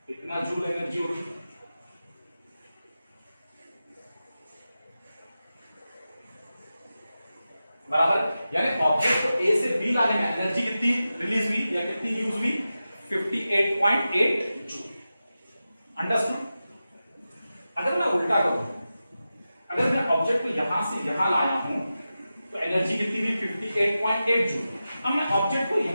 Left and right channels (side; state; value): both; inverted; correlation -0.93